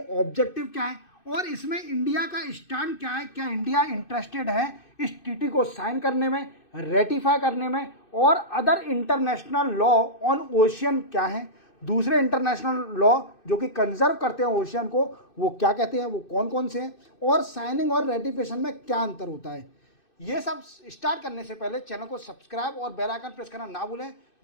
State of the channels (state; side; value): late; right; 2.6 ms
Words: ऑब्जेक्टिव क्या है और इसमें इंडिया का स्टैंड क्या है। क्या इंडिया इंटरेस्टेड है इस टीटी को साइन करने में, रेटिफाई करने में, और other international law on ocean क्या है, दूसरे इंटरनेशनल लॉ जो कि कंजर्व करते हैं ओशियन को, वो क्या कहते हैं, वो कौन कौन से हैं, और साइनिंग और रेटिफिकेशन में क्या अंतर होता है। ये सब स्टार्ट करने से पहले चैनल को सब्सक्राइब और बेल आइकन प्रेस करना ना भूलें।